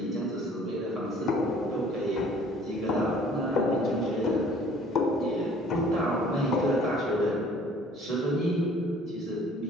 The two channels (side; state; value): both; normal; correlation 0.54